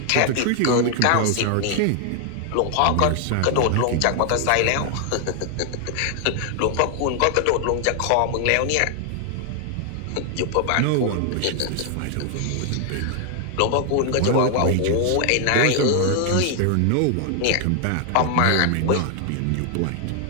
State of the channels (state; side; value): different; both; correlation 0.00